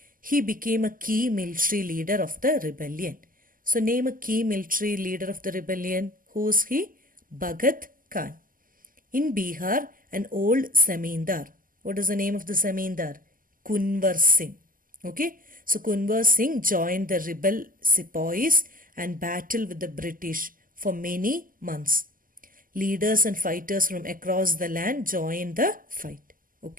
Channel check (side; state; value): left; late; 0.41 ms